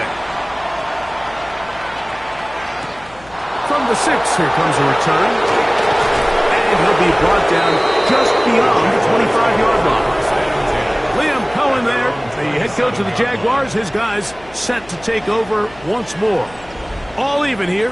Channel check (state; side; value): noise; left; hum, 23 dB below the sound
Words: From the 6, here comes a return. And he'll be brought down just beyond the 25-yard line. Liam Cohen there, the head coach of the Jaguars. His guys set to take over once more. All even